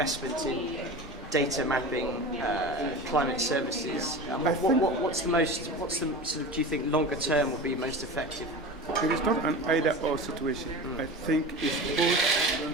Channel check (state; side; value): normal; both; correlation 0.31